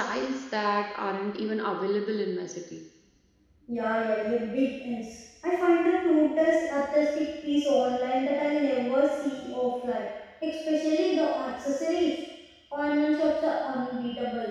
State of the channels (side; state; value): both; identical; correlation 1.00